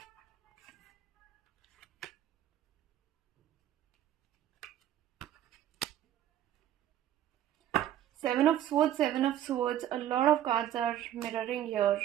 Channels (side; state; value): left; quieter; 11.8 dB